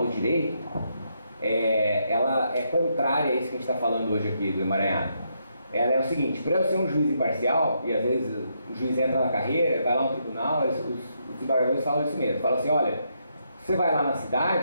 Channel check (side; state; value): both; inverted; correlation -0.78